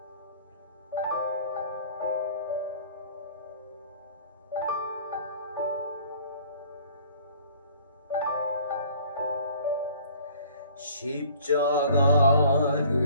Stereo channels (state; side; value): inverted; both; correlation -0.52